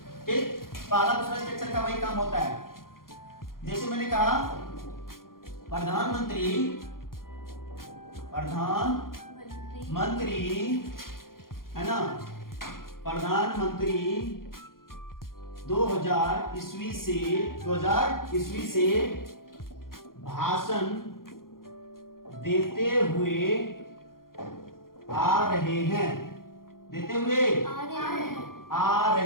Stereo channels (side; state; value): right; late; 0.92 ms